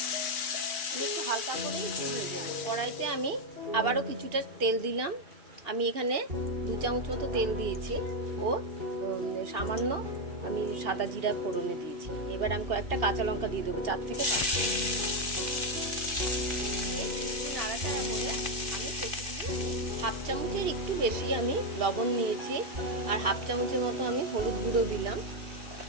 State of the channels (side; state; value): left; late; 2.7 ms